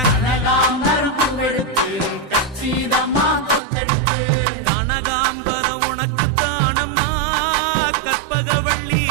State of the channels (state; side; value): drops out; left; at 3.6 s